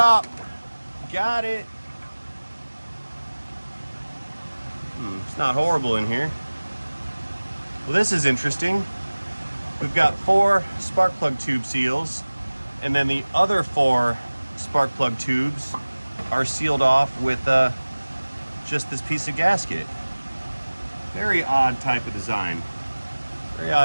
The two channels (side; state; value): both; inverted; correlation -1.00